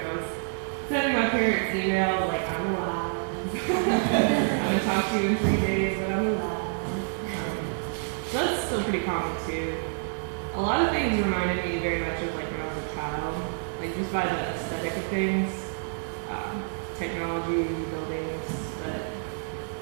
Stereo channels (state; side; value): silent; left; digital silence